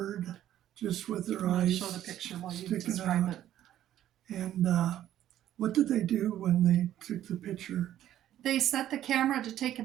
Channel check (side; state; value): left; quieter; 12.1 dB